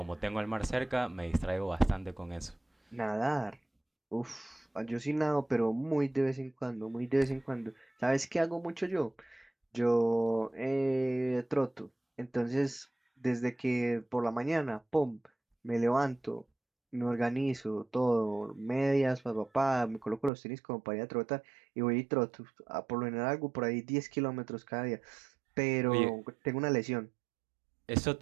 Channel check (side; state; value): left; drops out; at 20.3 s